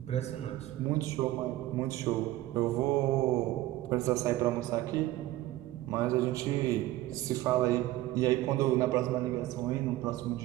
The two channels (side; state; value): left; quieter; 16.1 dB